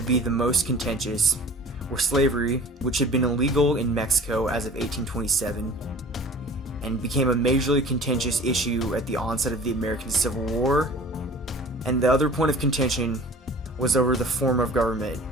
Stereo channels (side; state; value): both; normal; correlation 0.44